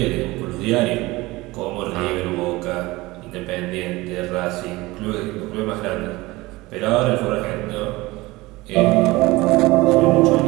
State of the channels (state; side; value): quieter; left; 20.7 dB